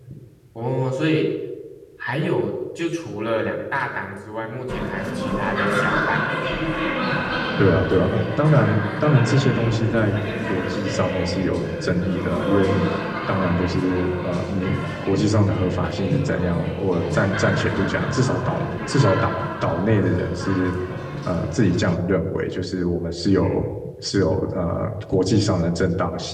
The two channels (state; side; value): identical; both; correlation 1.00